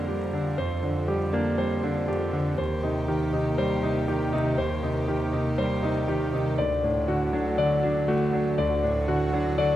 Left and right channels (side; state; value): both; normal; correlation 0.90